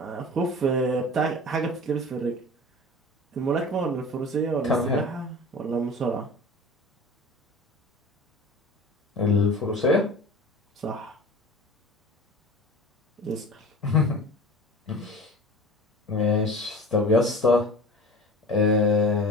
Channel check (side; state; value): both; normal; correlation 0.38